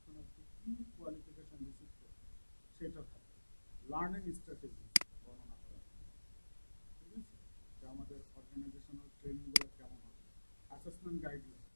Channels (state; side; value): inverted; both; correlation -1.00